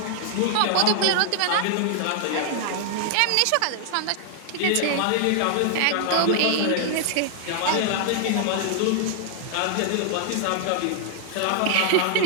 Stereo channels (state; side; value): different; both; correlation -0.01